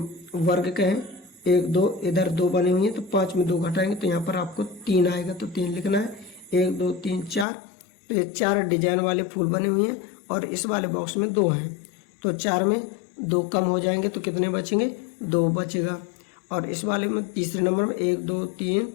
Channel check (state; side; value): drops out; right; at 7.5 s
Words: वर्ग कहें। 1 2, इधर 2 बने हुए हैं तो 5 में 2 घटाएंगे तो यहाँ पर आपको 3 आएगा, तो 3 लिखना है। 1 2 3 4, तो ये 4 डिजाइन वाले फूल बने हुए हैं और इस वाले बॉक्स में 2 हैं, तो 4 में 2 कम हो जाएंगे तो कितने बचेंगे, 2 बचेगा। और इस वाले में तीसरे नंबर में 1 2 3